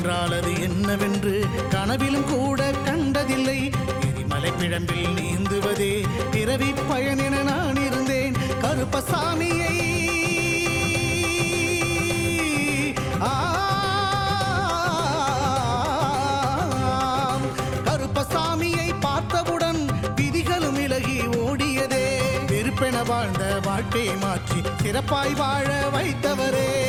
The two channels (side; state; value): both; identical; correlation 1.00